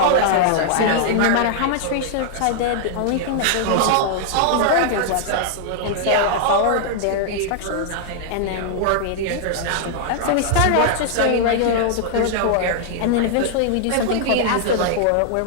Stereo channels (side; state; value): both; different; correlation -0.01